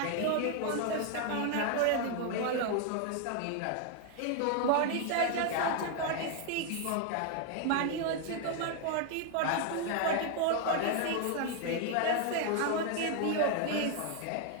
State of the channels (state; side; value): different; both; correlation 0.00